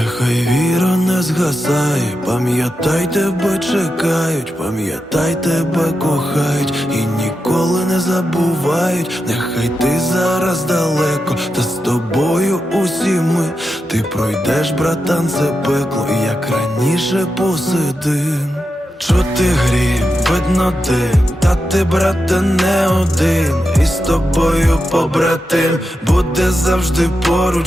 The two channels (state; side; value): normal; both; correlation 0.88